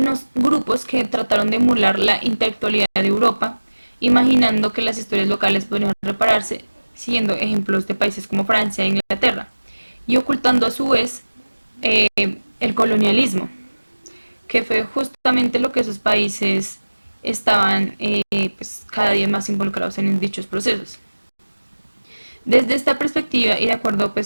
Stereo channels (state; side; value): inverted; both; correlation -1.00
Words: grupos que trataron de emular la intelectualidad de Europa, imaginando que las historias locales podrían repararse siguiendo ejemplos de países como Francia e Inglaterra, y ocultando a su vez el colonialismo, que fue justamente lo que esos países estaban pues, cada día más involucrados en dichos procesos. Desde esta perspectiva y de acuerdo